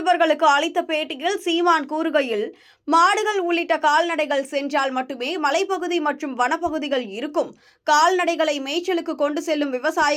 அளித்த பேட்டியில் சீமான் கூறுகையில், மாடுகள் உள்ளிட்ட கால்நடைகள் சென்றால் மட்டுமே மலைப்பகுதி மற்றும் வனப்பகுதிகள் இருக்கும். கால்நடைகளை மேய்ச்சலுக்கு கொண்டு செல்லும்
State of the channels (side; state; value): both; identical; correlation 1.00